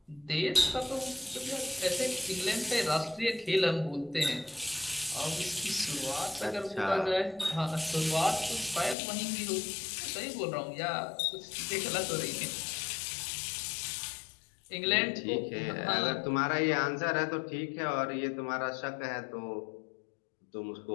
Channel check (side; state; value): right; drops out; at 9.0 s